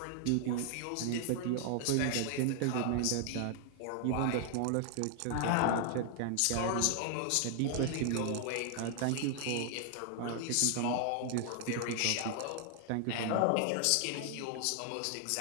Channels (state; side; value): different; both; correlation 0.00